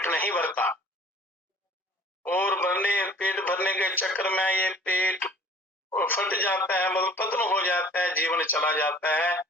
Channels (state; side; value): normal; both; correlation 0.49